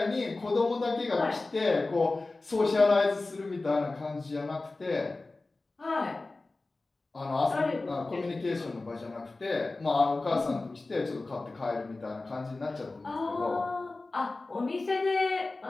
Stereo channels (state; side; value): quieter; right; 3.3 dB